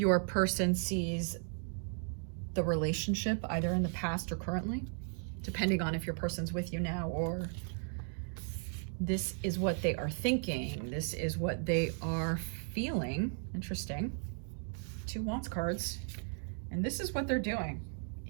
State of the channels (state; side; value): silent; left; 54 dB below the other